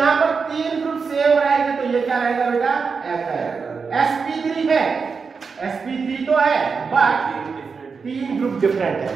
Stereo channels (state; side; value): quieter; left; 5.2 dB